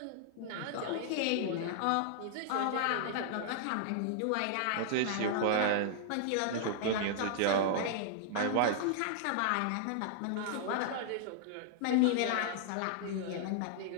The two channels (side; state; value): both; different; correlation -0.01